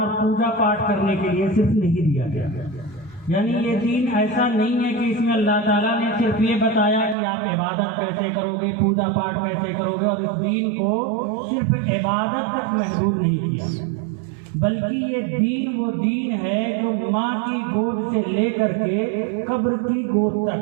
پوجا پاٹ کرنے کے لیے صرف نہیں دیا گیا۔ یعنی یہ دین ایسا نہیں ہے کہ اس میں اللہ تعالیٰ نے صرف یہ بتایا کہ آپ عبادت کیسے کرو گے، پوجا پاٹ کیسے کرو گے، اور اس دین کو صرف عبادت تک محدود نہیں کیا، بلکہ یہ دین وہ دین ہے جو ماں کی گود سے لے کر کے قبر کی گود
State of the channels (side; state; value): left; drops out; at 7.2 s